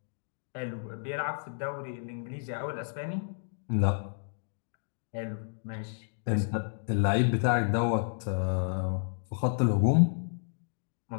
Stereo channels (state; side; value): silent; right; digital silence